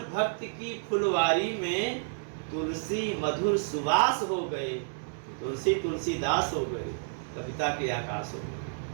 भक्ति की फुलवारी में तुलसी मधुर सुवास हो गए। तुलसी तुलसीदास हो गए, कविता के आकाश हो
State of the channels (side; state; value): left; silent; digital silence